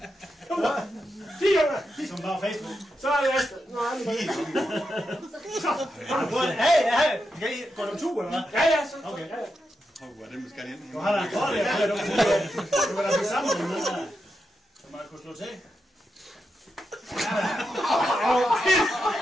4 gange. Som bare Facebook. Så er det Astrid. Nå, er det bare. Hey, går du tur, eller hvad? Ja, så. Okay, ja. Hvor den skal hen. Du har da godt, ja. Du kan da blive sammen med noget, som man kunne slå til.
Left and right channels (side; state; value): both; normal; correlation 0.86